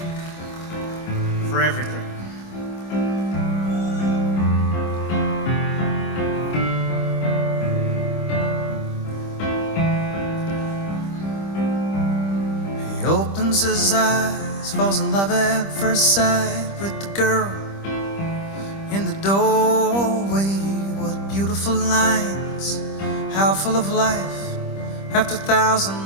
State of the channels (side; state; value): right; late; 25 ms